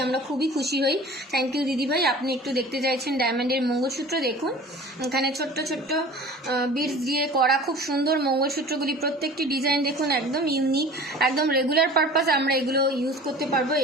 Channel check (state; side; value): normal; both; correlation 0.42